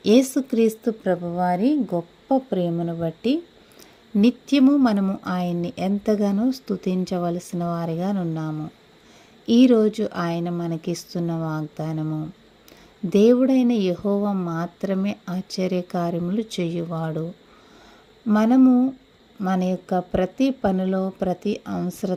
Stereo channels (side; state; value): both; identical; correlation 1.00